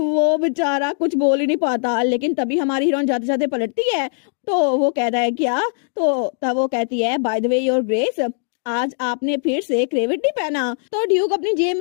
बेचारा कुछ बोल ही नहीं पाता। लेकिन तभी हमारी हीरोइन जाते जाते पलटती है। तो वो कहता है क्या? तो तब वो कहती है by the way your grace, आज आपने फिर से क्रेविट नहीं पहना। तो ड्यूक अपनी जेब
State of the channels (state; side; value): silent; right; digital silence